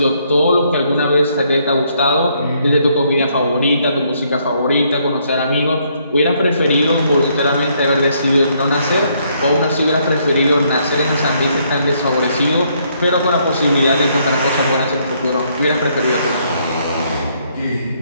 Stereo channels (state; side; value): inverted; both; correlation -0.71